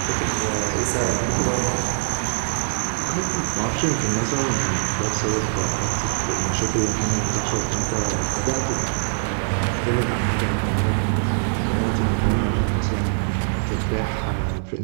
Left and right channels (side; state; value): left; silent; digital silence